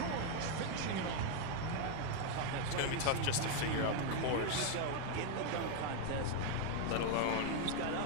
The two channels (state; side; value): different; both; correlation 0.01